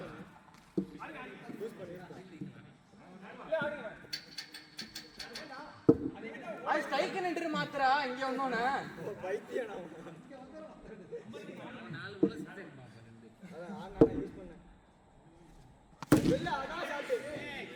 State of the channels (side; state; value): both; identical; correlation 1.00